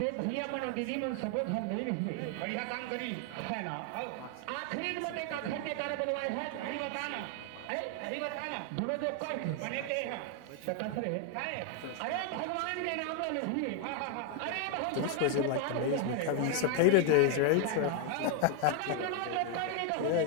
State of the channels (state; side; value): different; both; correlation 0.00